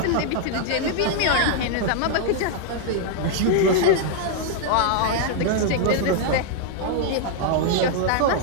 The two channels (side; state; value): both; different; correlation 0.00